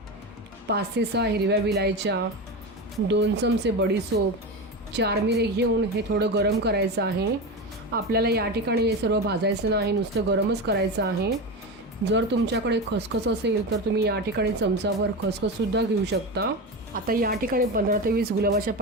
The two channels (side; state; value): both; normal; correlation 0.21